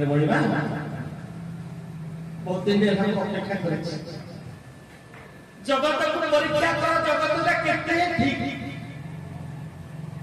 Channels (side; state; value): both; identical; correlation 1.00